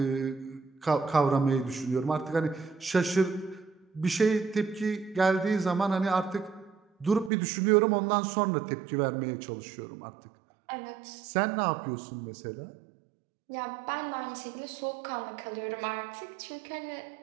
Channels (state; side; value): drops out; left; at 7.3 s